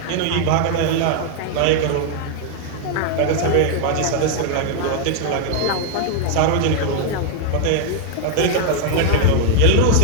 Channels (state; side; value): different; both; correlation 0.00